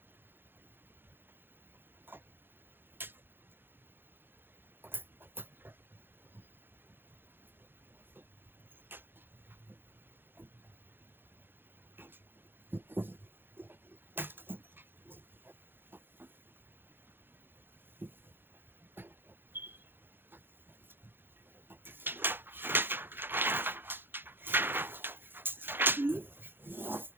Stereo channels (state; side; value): late; left; 0.10 ms